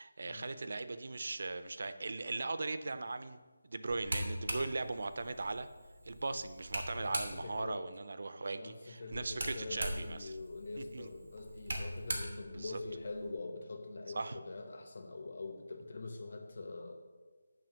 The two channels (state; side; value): inverted; both; correlation -0.94